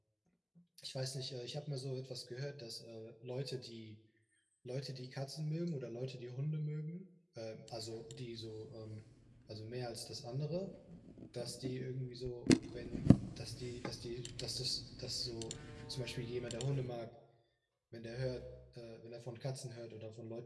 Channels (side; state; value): both; identical; correlation 1.00